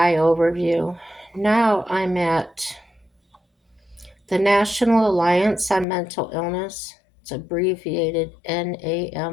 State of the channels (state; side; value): drops out; right; at 5.9 s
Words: overview. Now I'm at the National Alliance on Mental Illness. It's abbreviated